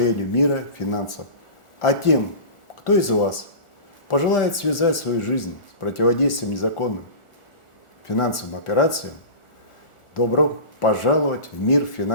мира финансов. А тем, кто из вас пожелает связать свою жизнь с противодействием незаконным финансовым операциям, добро пожаловать в мир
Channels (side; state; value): right; late; 1.4 ms